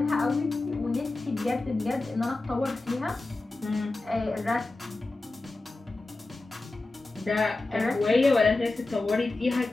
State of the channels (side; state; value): right; quieter; 3.2 dB